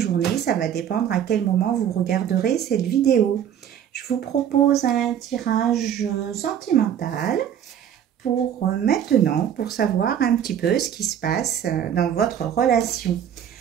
ça va dépendre à quel moment vous regarderez cette vidéo. Je vous propose un tirage sentimental pour maintenant, pour savoir un petit peu ce qui se passe dans votre relation.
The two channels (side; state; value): left; quieter; 9.4 dB